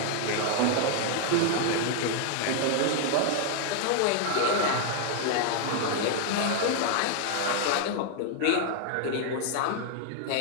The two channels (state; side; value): different; both; correlation 0.00